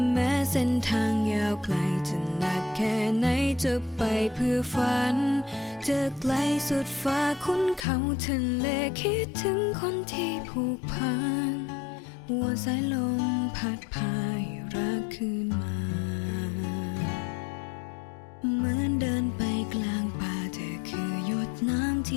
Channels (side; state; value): right; drops out; at 7.9 s